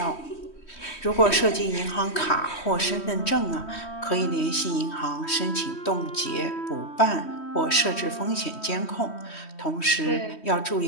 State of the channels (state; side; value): late; right; 3.1 ms